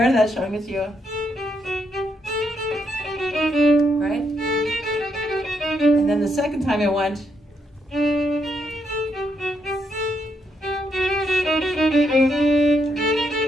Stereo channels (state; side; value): normal; both; correlation 0.77